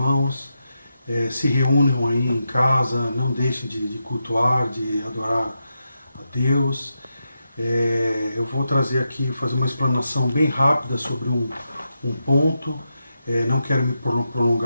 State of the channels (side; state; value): both; inverted; correlation -0.87